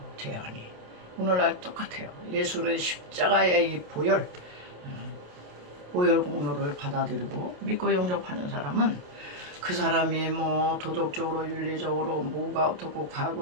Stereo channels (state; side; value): late; left; 28 ms